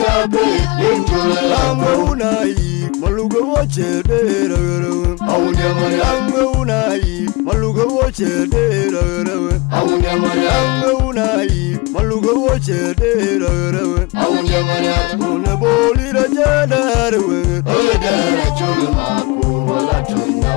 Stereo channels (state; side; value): quieter; right; 25.5 dB